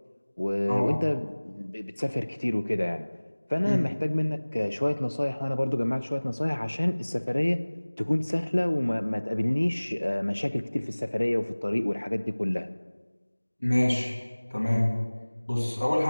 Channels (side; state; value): both; inverted; correlation -1.00